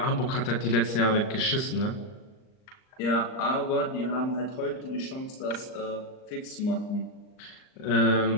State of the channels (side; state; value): right; late; 39 ms